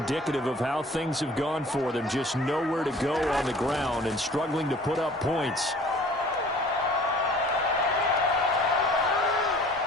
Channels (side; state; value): both; normal; correlation 0.49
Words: of how things have gone for them. Just nowhere to go on the ground and struggling to put up points.